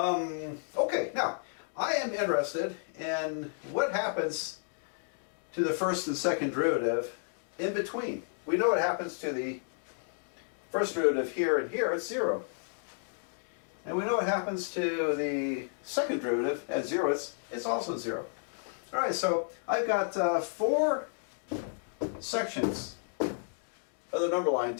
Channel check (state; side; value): silent; right; digital silence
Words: now, I am interested in what happens to the first and second derivative in between. We know what happens to the first derivative here and here, it's 0. And we know what happens to the second derivative at 0, it's also 0. All right, so I've got 4 sections of the number line